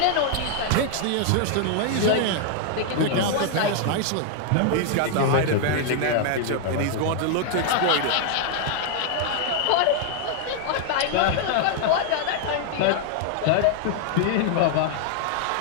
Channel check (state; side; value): different; both; correlation 0.00